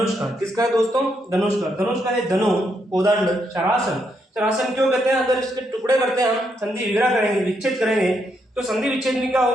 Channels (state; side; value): normal; both; correlation 0.78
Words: का। किसका है दोस्तों, धनुष का। धनुष का है धनु, कोदंड, शरासन। शरासन क्यों कहते हैं, अगर इसके टुकड़े करते हैं हम, संधि विग्रह करेंगे, विच्छेद करेंगे, तो संधि विच्छेद में क्या